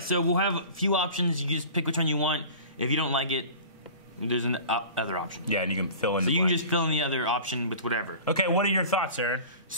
so we'll have a few options. You just pick which one you want. If you don't like it, there's an other option. Yeah, and you can fill in. So you can just fill in the other option with whatever. Okay, what are your thoughts, Aaron?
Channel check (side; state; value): both; inverted; correlation -0.39